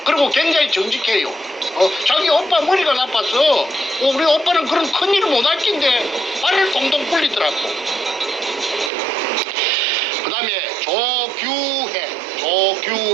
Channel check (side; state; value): left; drops out; at 8.9 s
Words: 그리고 굉장히 정직해요. 자기 오빠 머리가 나빠서 우리 오빠는 그런 큰일을 못할 낀데 말을 동동 굴리더라고. 그 다음에 조규해